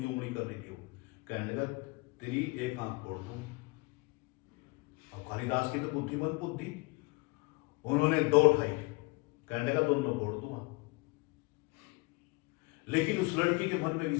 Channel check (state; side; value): quieter; right; 26.5 dB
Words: जो उंगली कर रही थी, कहने लगा तेरी एक आंख तोड़ दूं। अब कालिदास की तो बुद्धिमंत बुद्धि, उन्होंने दो उठाई, कहने लगा दोनों तोड़ दूंगा। लेकिन उस लड़की के मन में